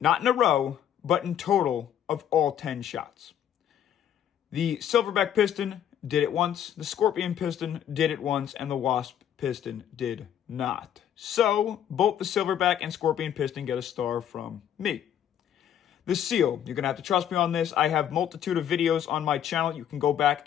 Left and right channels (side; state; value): right; quieter; 9.9 dB